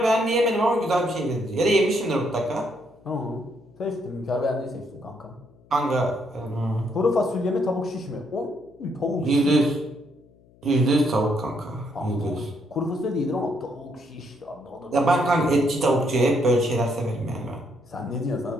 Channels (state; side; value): noise; left; hum, 28 dB below the sound